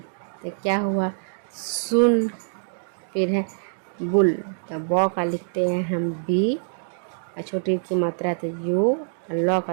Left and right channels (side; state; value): left; silent; digital silence